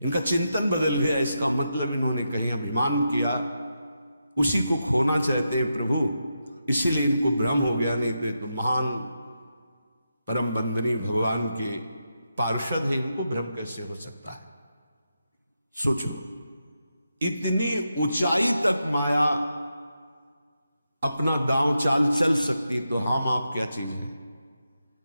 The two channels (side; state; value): both; inverted; correlation -0.86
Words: इनका चिंतन बदल गया। इसका मतलब इन्होंने कहीं अभिमान किया, उसी को खोना चाहते हैं प्रभु, इसीलिए इनको भ्रम हो गया। नहीं तो ये तो महान परम बंदनी भगवान के पार्षद है, इनको भ्रम कैसे हो सकता है? सोचो, इतनी ऊंचाई तक माया अपना दांव चाल चल सकती, तो हम आप क्या चीज हैं?